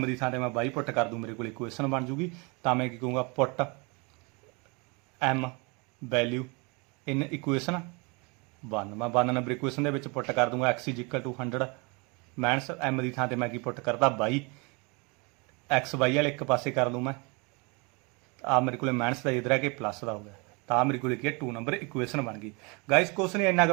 ਦੀ ਥਾਂ ਤੇ ਮੈਂ 22 ਪੁੱਟ ਕਰ ਦੂੰ, ਮੇਰੇ ਕੋਲ ਇਕੁਏਸ਼ਨ ਬਣ ਜੂਗੀ। ਤਾਂ ਮੈਂ ਕੀ ਕਹੂੰਗਾ ਪੁੱਟ M ਵੈਲਿਊ ਇਨ ਇਕੁਏਸ਼ਨ 1, ਮੈਂ 1 ਨੰਬਰ ਇਕੁਏਸ਼ਨ ਦੇ ਵਿੱਚ ਪੁੱਟ ਕਰ ਦੂੰਗਾ x = 100 ਮਾਈਨਸ M ਦੀ ਥਾਂ ਤੇ ਮੈਂ ਕੀ ਪੁੱਟ ਕਰਦਾ 22, x y ਵਾਲੇ ਇੱਕ ਪਾਸੇ ਕਰ ਲੂੰ ਮੈਂ, ਆ ਮੇਰੇ ਕੋਲ ਮਾਈਨਸ ਦਾ ਇਧਰ ਆ ਕੇ ਪਲੱਸ ਦਾ ਹੋ ਗਿਆ, ਤਾਂ ਮੇਰੇ ਕੋਲ ਕੀ ਹੈ 2 ਨੰਬਰ ਇਕੁਏਸ਼ਨ ਬਣ ਗਈ। ਗਾਇਸ ਕੁਛ ਨਹੀਂ, ਇੰਨਾ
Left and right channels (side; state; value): left; quieter; 29.9 dB